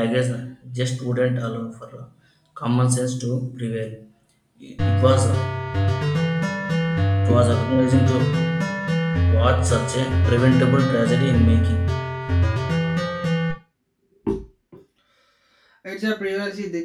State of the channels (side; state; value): both; identical; correlation 1.00